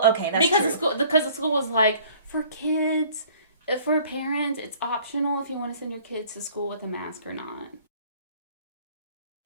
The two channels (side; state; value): both; inverted; correlation -0.54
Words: okay, that's true. Because the school was like, for kids, for parents, it's optional if you want to send your kids to school with a mask or not.